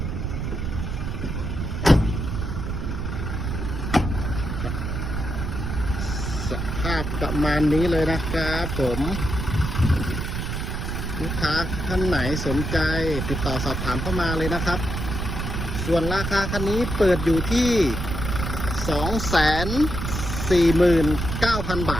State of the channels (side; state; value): right; noise; rumble, 3 dB below the sound